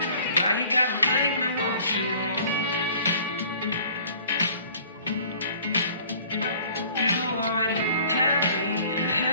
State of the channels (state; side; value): inverted; both; correlation -0.52